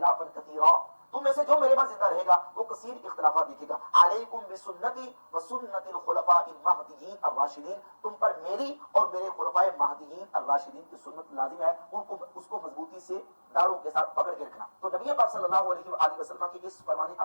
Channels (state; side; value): inverted; both; correlation -1.00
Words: کثیرا، تم میں سے جو میرے بعد زندہ رہے گا وہ کثیر اختلافات دیکھے گا. علیکم بسنتی وسنت الخلفاء المہدیین الراشدین، تم پر میری اور میرے خلفاء مہدیین الراشدین کی سنت لازم ہے، اس کو مضبوطی سے داڑوں کے ساتھ پکڑ کے رکھنا. تو نبی پاک صلی اللہ علیہ وآلہ وسلم کی اس فرمان